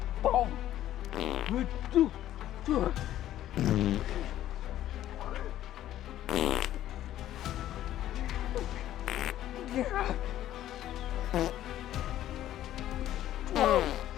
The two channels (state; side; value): quieter; right; 12.8 dB